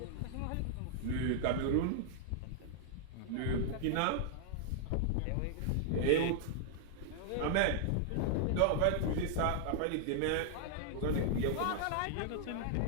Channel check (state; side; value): different; both; correlation -0.01